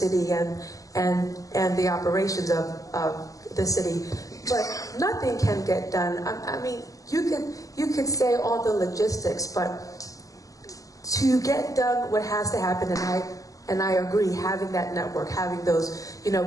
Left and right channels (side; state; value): right; late; 0.17 ms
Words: and the operations of the city, but nothing can get done. I mean, you could say all the logistics, but to get done what has to happen, and I agree, having that network, having those, you know,